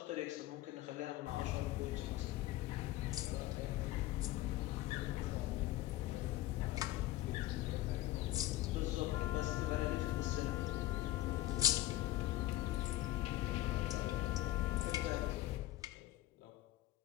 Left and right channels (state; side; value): quieter; right; 15.6 dB